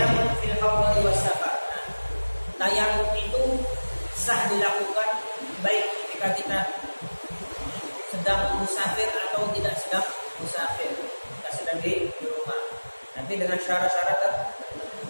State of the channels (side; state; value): both; inverted; correlation -1.00